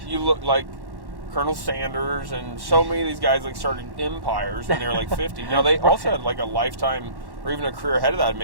You look like Colonel Sanders and so many of these guys, like, started empires when they were like 50. Now, they also had like a lifetime or even a career ahead of that,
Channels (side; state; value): left; late; 1.1 ms